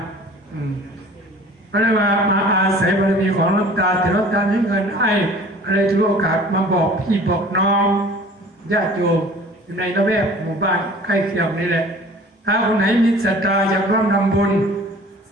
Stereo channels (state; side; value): normal; both; correlation 0.47